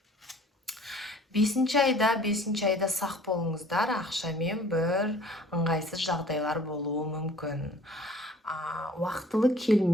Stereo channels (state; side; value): normal; both; correlation 0.51